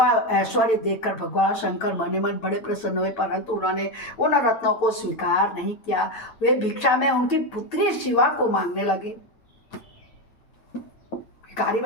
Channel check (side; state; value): right; late; 8.9 ms